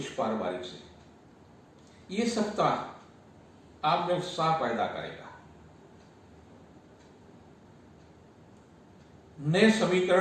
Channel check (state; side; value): identical; both; correlation 1.00